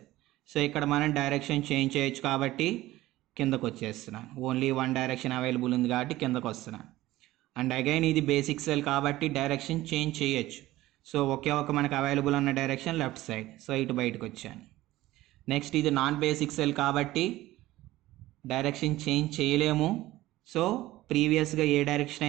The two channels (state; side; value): quieter; left; 16.6 dB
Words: సో ఇక్కడ మనం డైరెక్షన్ చేంజ్ చేయొచ్చు కాబట్టి కిందకు వచ్చేస్తున్నాను. ఓన్లీ వన్ డైరెక్షన్ అవైలబుల్ ఉంది కాబట్టి కిందకు వస్తున్నాను. అండ్ అగైన్ ఇది బేసిక్ సెల్ కాబట్టి డైరెక్షన్ చేంజ్ చేయొచ్చు. సో ఒకే ఒక మనకు అవైలబుల్ ఉన్న డైరెక్షన్ లెఫ్ట్ సైడ్. సో ఇటు బయటకు వచ్చాను. నెక్స్ట్ ఇది నాన్ బేసిక్ సెల్ కాబట్టి డైరెక్షన్ చేంజ్ చేయలేము. సో ప్రీవియస్గా ఏ డైరెక్షన్